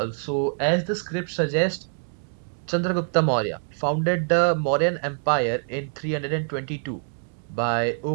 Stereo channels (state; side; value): silent; left; digital silence